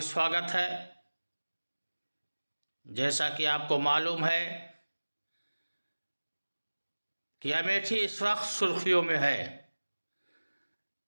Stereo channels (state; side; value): inverted; both; correlation -1.00